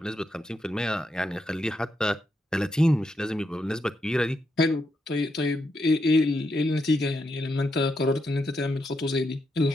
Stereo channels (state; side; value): normal; both; correlation 0.82